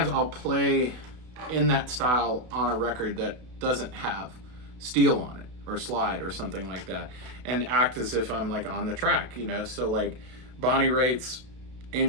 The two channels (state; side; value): late; left; 32 ms